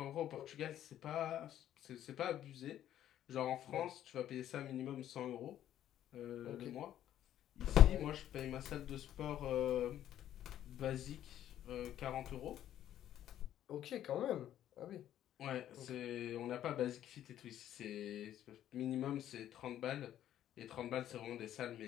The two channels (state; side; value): quieter; right; 11.6 dB